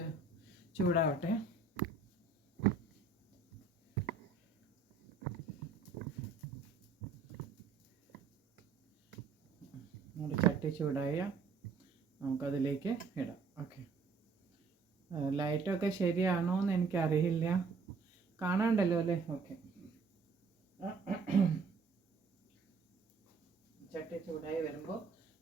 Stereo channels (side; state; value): left; quieter; 4.7 dB